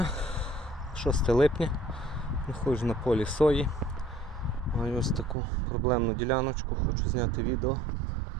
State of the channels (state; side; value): drops out; left; at 5.4 s